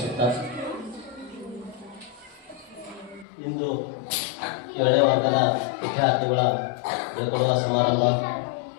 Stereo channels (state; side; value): drops out; right; at 3.2 s